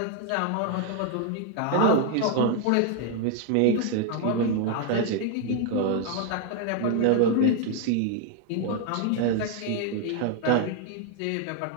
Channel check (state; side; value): different; both; correlation 0.00